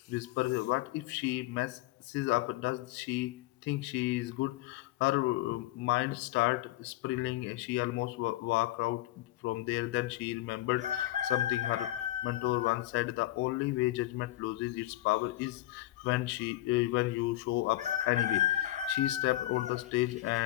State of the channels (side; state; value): right; quieter; 15.7 dB